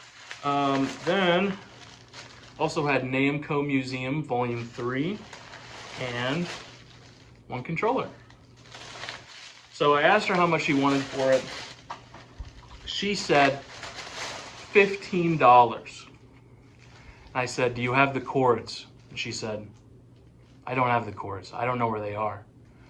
Then also had Namco Museum Volume 3 and one controller. So I asked her how much she wanted for it. She said $15. I said, do you have the cords? And she said, I don't have the cords. I don't know where they are.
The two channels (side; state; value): both; identical; correlation 1.00